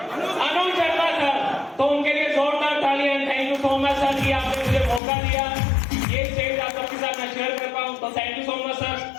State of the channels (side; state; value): right; drops out; at 5.0 s